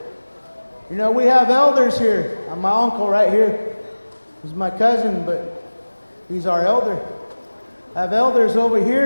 We have elders here. My uncle right here. He's my cousin, but he's our elder. I have elders over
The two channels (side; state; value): both; inverted; correlation -1.00